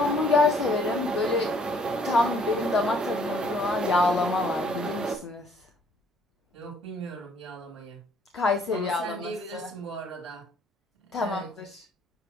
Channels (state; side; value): normal; both; correlation 0.62